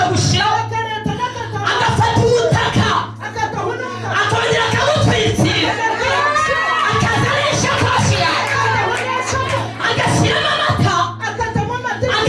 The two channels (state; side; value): identical; both; correlation 1.00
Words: agafata umutaka akongera akamutwikira akazana ishakoshi agashyiramo amata